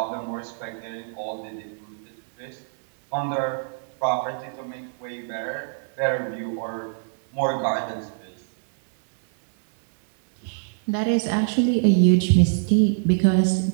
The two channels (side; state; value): left; silent; digital silence